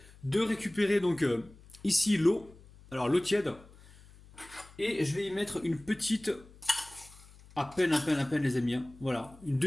de récupérer donc ici l'eau, alors l'eau tiède, et je vais y mettre une petite, à peine les amis, hein. Voilà, une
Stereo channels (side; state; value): left; noise; hum, 23 dB below the sound